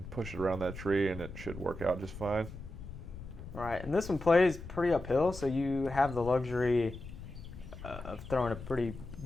push it around that tree, and it should work out just fine. All right, and this one plays pretty uphill, so you have the luxury of throwing a pretty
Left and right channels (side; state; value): left; noise; rumble, 12 dB below the sound